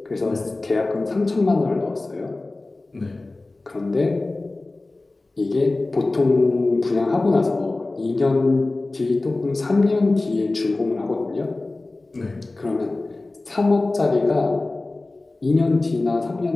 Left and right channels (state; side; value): quieter; right; 3.1 dB